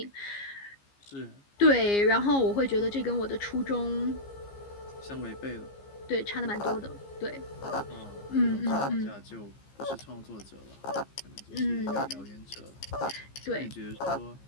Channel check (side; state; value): right; late; 15 ms